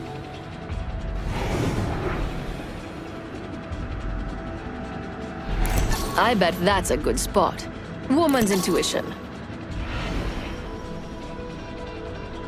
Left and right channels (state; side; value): identical; both; correlation 1.00